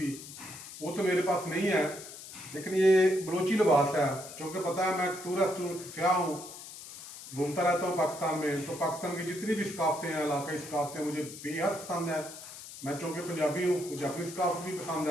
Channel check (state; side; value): noise; left; hiss, 13 dB below the sound